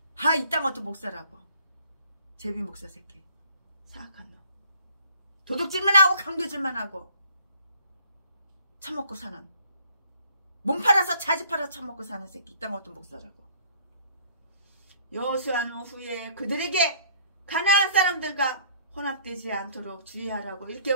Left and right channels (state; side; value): inverted; both; correlation -0.57